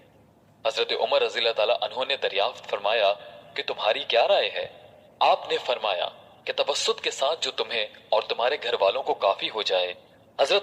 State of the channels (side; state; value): both; identical; correlation 1.00